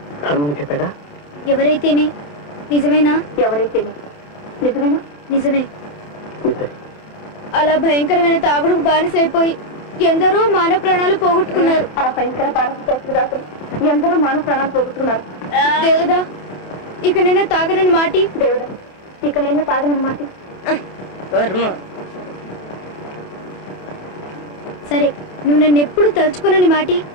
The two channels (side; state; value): right; late; 27 ms